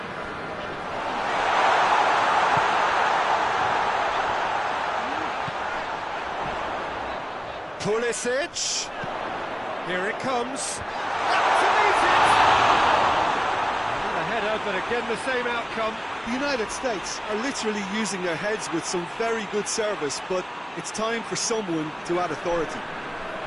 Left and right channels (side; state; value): both; identical; correlation 1.00